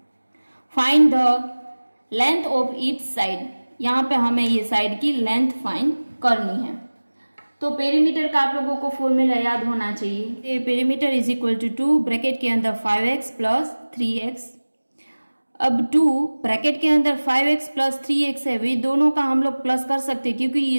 Find the length of each side, यहाँ पे हमें ये साइड की लेंथ फाइंड करनी है। तो पेरीमीटर का आप लोगों को फॉर्मूला याद होना चाहिए, perimeter is equal to 2 bracket के अंदर 5x प्लस 3x। अब 2 ब्रैकेट के अंदर 5x प्लस 3x है, वे दोनों का हम लोग प्लस कर सकते हैं क्योंकि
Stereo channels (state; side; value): inverted; both; correlation -1.00